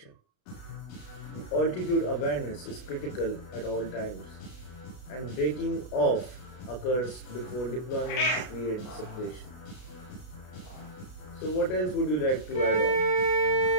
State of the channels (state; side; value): late; right; 33 ms